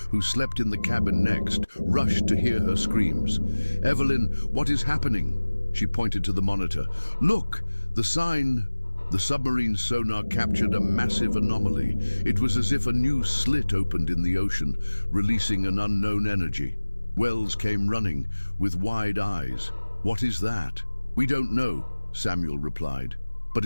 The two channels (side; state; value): both; inverted; correlation -1.00